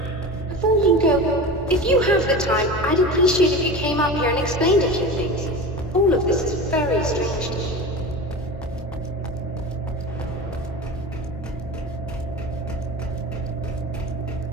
Before you go, if you have the time, I'd appreciate if you came up here and explained a few things. All of this is very strange to me.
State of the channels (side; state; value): both; normal; correlation 0.30